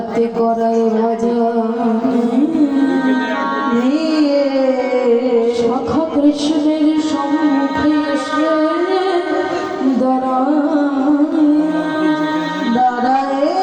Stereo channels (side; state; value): both; identical; correlation 1.00